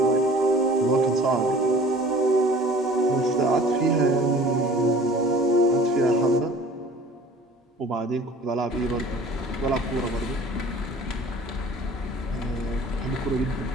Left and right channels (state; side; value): normal; both; correlation 0.47